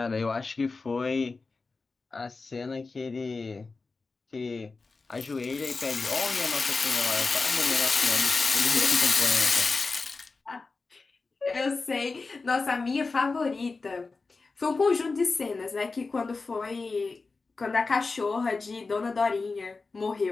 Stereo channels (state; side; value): quieter; right; 4.0 dB